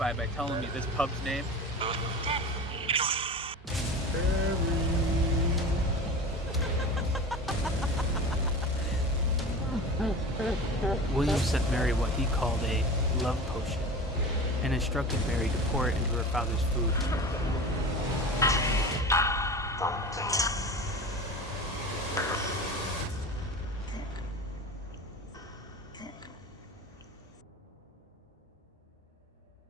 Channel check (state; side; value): normal; both; correlation 0.33